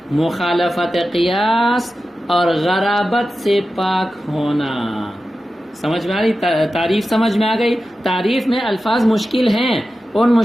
مخالفت قیاس اور غرابت سے پاک ہونا۔ سمجھ میں آ رہی؟ تعریف سمجھ میں آ گئی؟ تعریف میں الفاظ مشکل ہیں، ان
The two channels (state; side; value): normal; both; correlation 0.93